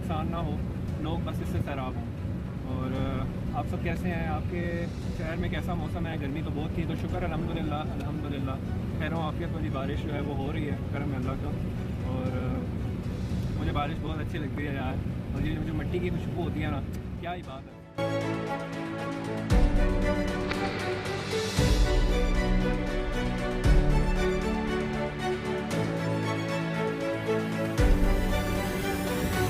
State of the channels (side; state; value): both; identical; correlation 1.00